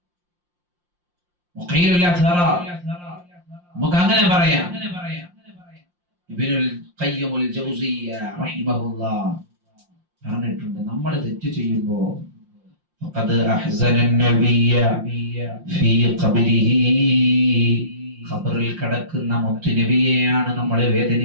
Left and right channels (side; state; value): left; late; 5.7 ms